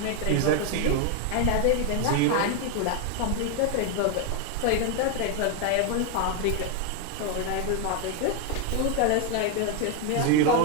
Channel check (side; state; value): both; different; correlation 0.01